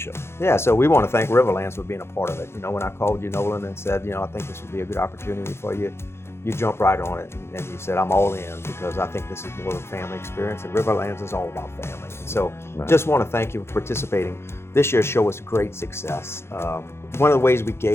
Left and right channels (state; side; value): late; right; 0.12 ms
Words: Yeah, so we want to thank Riverlands for being a part of it. You know, when I called you, Nolan, and said, I think this would be a good opportunity for you, you jumped right on it and you said, I'm all in because I think this is more of a family experience, and Riverlands is all about family. And so just want to thank you for participating. This year's show was a great success. One of the ways we